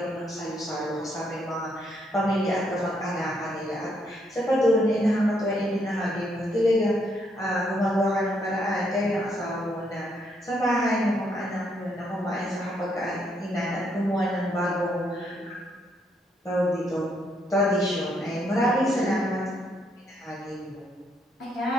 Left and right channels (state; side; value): normal; both; correlation 0.74